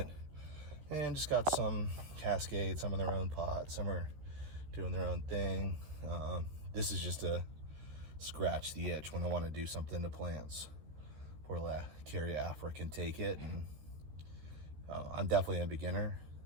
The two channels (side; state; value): left; late; 13 ms